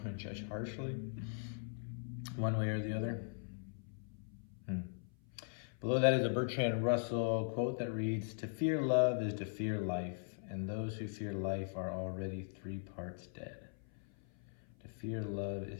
to judge harshly, one way or the other. Below that is a Bertrand Russell quote that reads, To fear love is to fear life, and those who fear life are already 3 parts dead. To fear love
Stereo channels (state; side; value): silent; right; 51 dB below the other